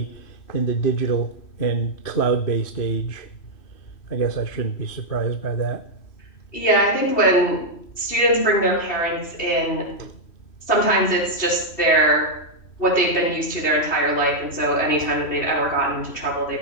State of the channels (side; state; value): right; late; 3.1 ms